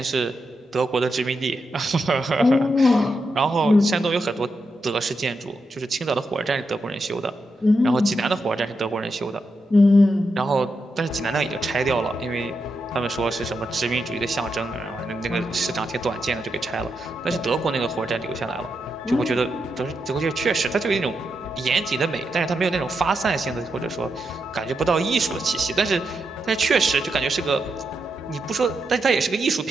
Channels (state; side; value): normal; both; correlation 0.85